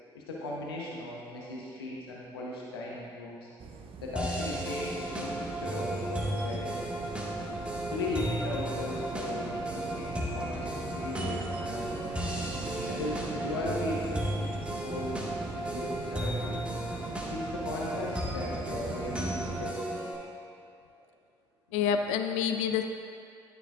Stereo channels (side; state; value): both; normal; correlation 0.58